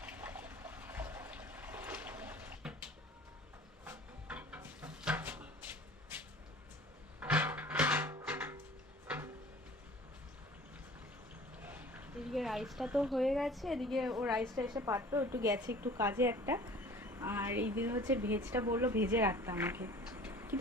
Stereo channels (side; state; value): both; normal; correlation 0.45